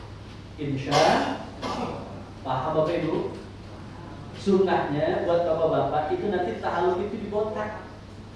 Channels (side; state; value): both; identical; correlation 1.00